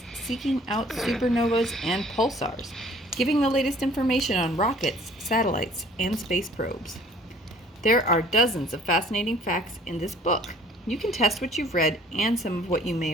seeking out supernovas and pulsars, giving the latest information on rockets, satellites, and space probes. There are dozens of fascinating facts in this book. You can test what you've read and some of what you may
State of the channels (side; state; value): both; normal; correlation 0.54